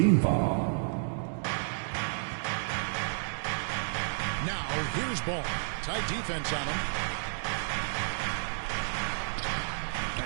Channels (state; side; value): silent; left; digital silence